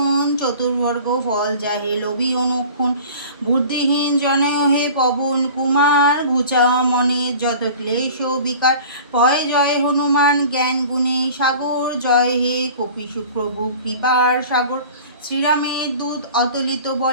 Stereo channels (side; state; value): both; inverted; correlation -0.43